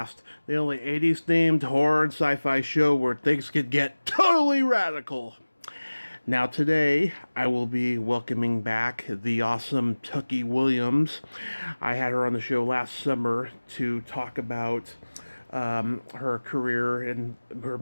the only 80s themed horror and sci fi show where things could get totally radical. Now, today, I will be welcoming back the awesome Tucky Williams. I had her on the show last summer to talk about her career in her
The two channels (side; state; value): both; inverted; correlation -1.00